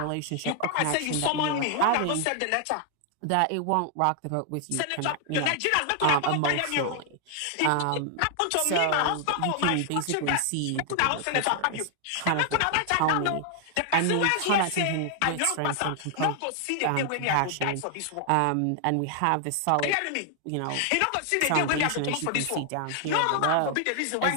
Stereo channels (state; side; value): different; both; correlation 0.00